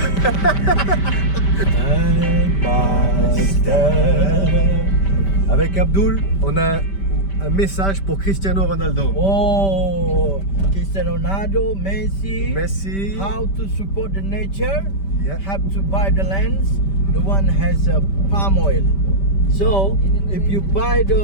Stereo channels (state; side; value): late; right; 5.1 ms